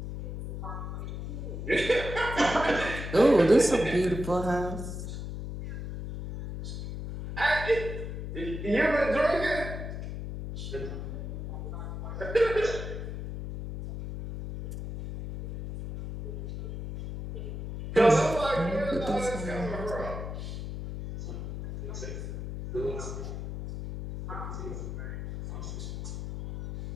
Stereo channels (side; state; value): left; noise; hum, 6 dB below the sound